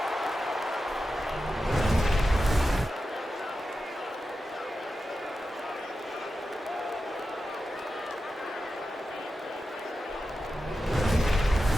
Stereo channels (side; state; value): both; normal; correlation 0.91